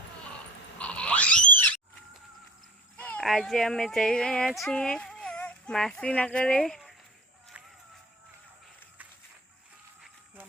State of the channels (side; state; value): both; normal; correlation 0.39